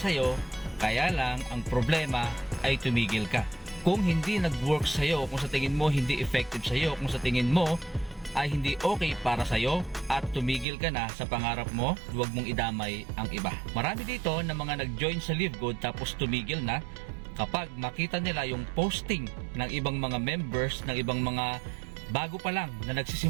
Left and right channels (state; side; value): drops out; left; at 10.7 s